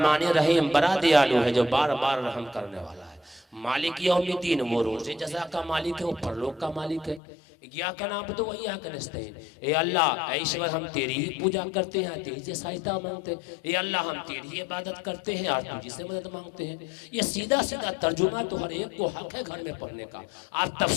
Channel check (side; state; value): right; drops out; at 7.2 s